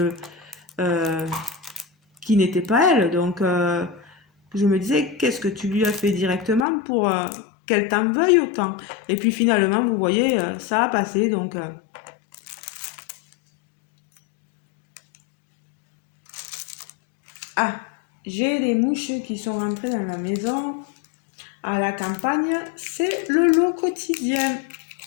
n'étaient pas elles. Donc, je me disais, qu'est-ce que tu lui as fait directement pour qu'elle t'en veuille autant? Et puis finalement, vous voyez, ça a passé. Donc, ah, j'ai les mouches qui sont rentrées dans la maison. À la campagne, c'est le lot quotidien.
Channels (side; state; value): right; drops out; at 6.7 s